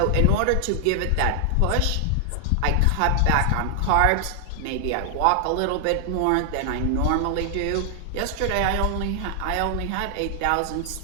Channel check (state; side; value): different; both; correlation 0.00